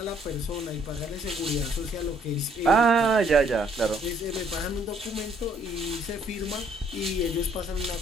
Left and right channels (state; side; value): normal; both; correlation 0.65